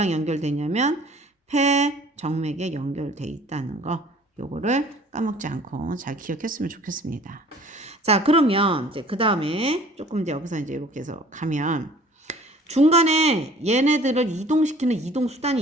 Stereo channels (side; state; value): both; normal; correlation 0.51